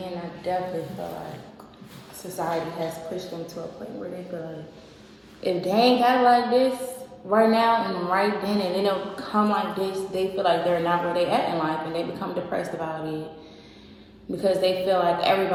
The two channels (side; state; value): both; identical; correlation 1.00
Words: and I definitely feel like society has pushed them to a point where they feel like, if they ain't got it like this right now and right then, and they don't come like this, they feel like they're not where they at in life, and they become depressed about it, because they feel like